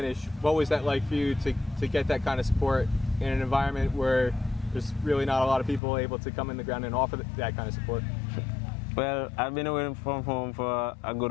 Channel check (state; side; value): drops out; right; at 5.8 s